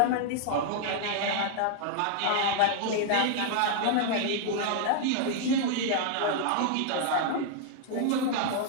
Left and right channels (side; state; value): both; different; correlation 0.00